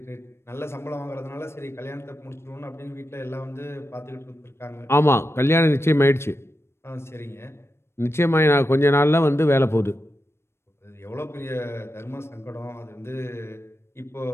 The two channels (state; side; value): late; right; 0.12 ms